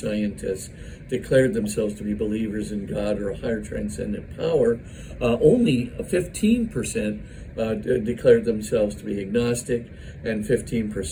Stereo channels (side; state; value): both; identical; correlation 1.00